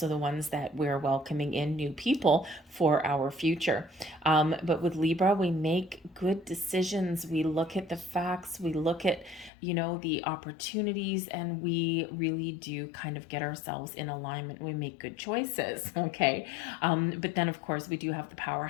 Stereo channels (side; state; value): right; drops out; at 9.5 s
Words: the ones that we're welcoming in new people for our future. But with Libra, we make good decisions. We look at the facts. We look at, the opportunities, and we really do kind of get ourselves in alignment. We make good choices, okay? But then, of course, we do have the